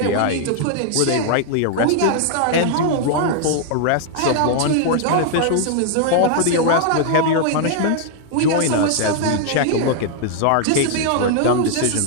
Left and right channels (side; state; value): both; different; correlation 0.00